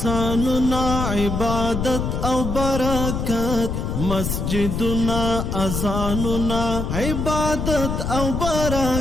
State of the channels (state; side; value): noise; left; rumble, 2 dB below the sound